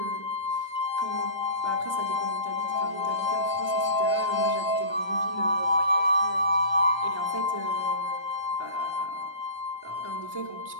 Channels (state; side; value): late; right; 1.3 ms